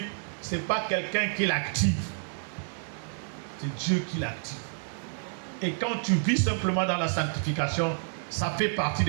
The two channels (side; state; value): left; silent; digital silence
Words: ce n'est pas quelqu'un qui l'active. C'est Dieu qui l'active. Et quand tu vis simplement dans la sanctification, ça fait partie